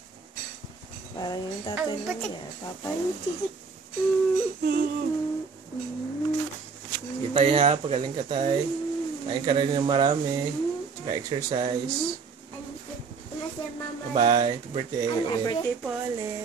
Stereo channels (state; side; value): quieter; left; 5.1 dB